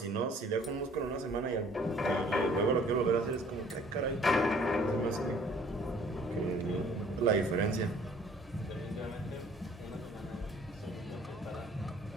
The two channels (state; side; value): normal; both; correlation 0.55